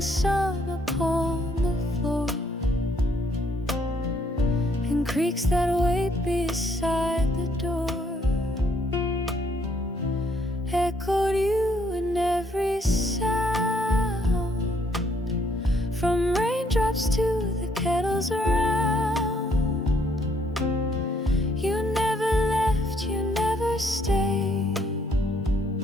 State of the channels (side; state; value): both; normal; correlation 0.68